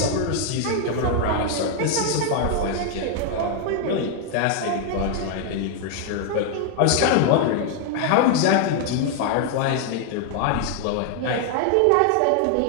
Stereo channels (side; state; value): both; different; correlation 0.00